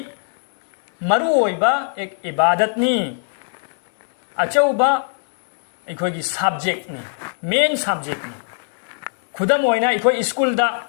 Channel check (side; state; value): right; silent; 62 dB below the other